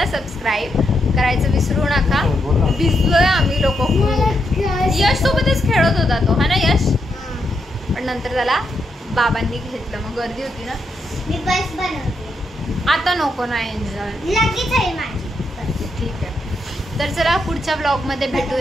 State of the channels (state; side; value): normal; both; correlation 0.81